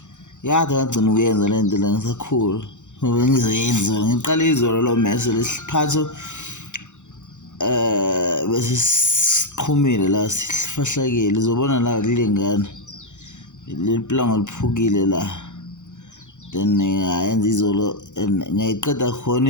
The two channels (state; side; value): late; right; 0.85 ms